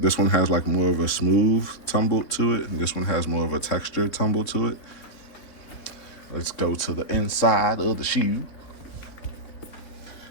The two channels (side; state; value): right; late; 3.7 ms